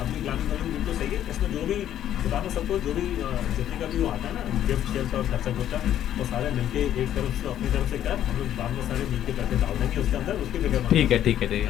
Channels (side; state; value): right; quieter; 11.2 dB